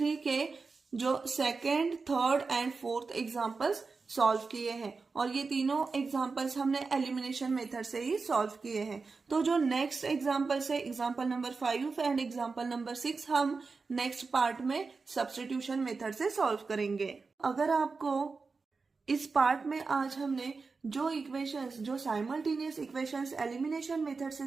के जो second, third and fourth examples solve किए हैं और ये तीनों एग्जाम्पल्स हमने एलिमिनेशन मेथड से ही सॉल्व किए हैं। तो जो नेक्स्ट एग्जाम्पल्स है, example number 5 and example number 6, हम नेक्स्ट पार्ट में सब्स्टिट्यूशन मेथड से सॉल्व करेंगे। अगर आपको इस पार्ट में आज हमने जो इक्वेशंस, जो साइमल्टेनियस इक्वेशंस एलिमिनेशन मेथड से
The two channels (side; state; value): left; quieter; 4.4 dB